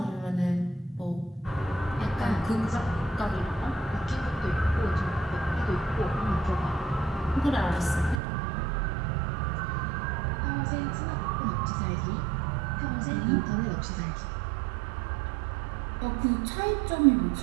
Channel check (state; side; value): drops out; left; at 8.2 s